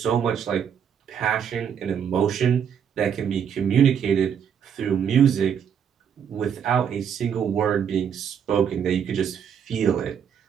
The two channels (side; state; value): left; quieter; 8.0 dB